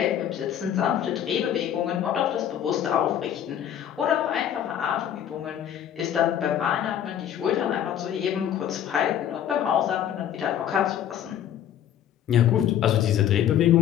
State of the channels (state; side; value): quieter; right; 10.2 dB